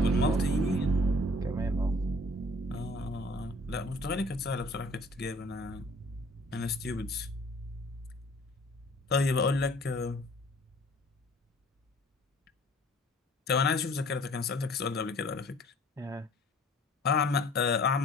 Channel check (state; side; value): normal; both; correlation 0.53